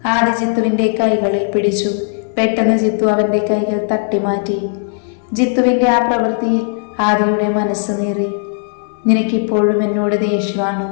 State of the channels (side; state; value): right; silent; 59 dB below the other